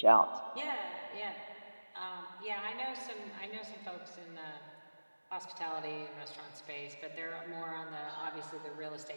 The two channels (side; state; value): both; inverted; correlation -1.00